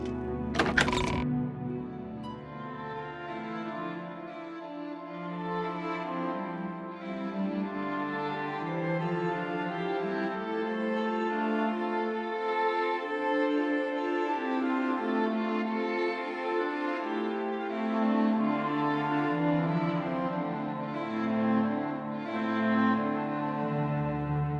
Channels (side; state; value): both; identical; correlation 1.00